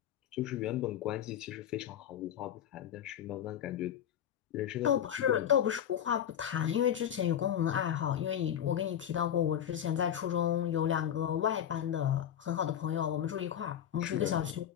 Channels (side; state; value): right; quieter; 9.8 dB